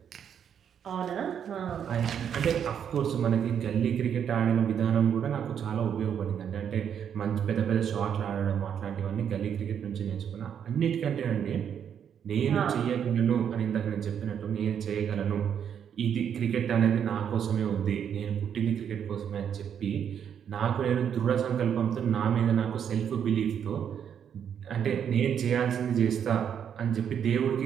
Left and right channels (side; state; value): left; quieter; 8.4 dB